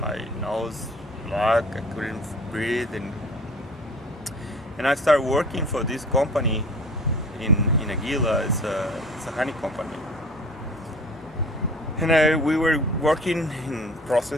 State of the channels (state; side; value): normal; both; correlation 0.46